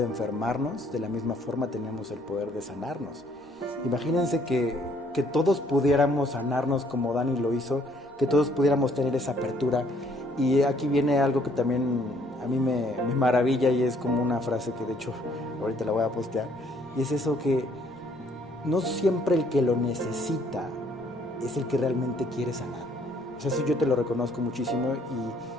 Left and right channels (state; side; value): normal; both; correlation 0.64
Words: enfermarnos, de la misma forma tenemos el poder de sanarnos. Imagínense que todos pudiéramos sanarnos como Dani lo hizo, que todos pudiéramos tener esa apertura. Y aquí viene algo que también a mí me maravilla, y es como una frase que de hecho ahorita la voy a postear, y es eso que no siempre el que lo necesita es el que realmente quiere sanar. O sea, eso yo te lo reconozco muchísimo